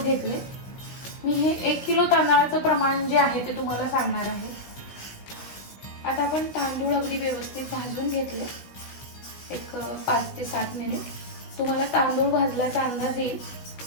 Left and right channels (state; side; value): late; right; 16 ms